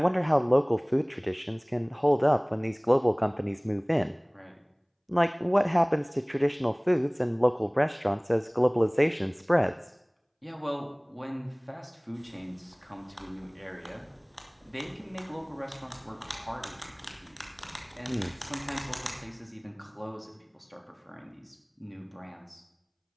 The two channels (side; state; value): both; identical; correlation 1.00